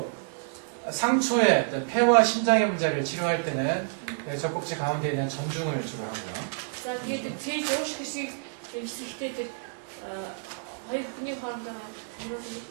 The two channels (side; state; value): left; silent; 59 dB below the other